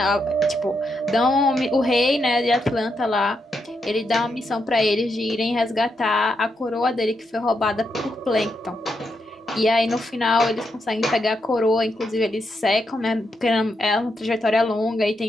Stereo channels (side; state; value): both; normal; correlation 0.82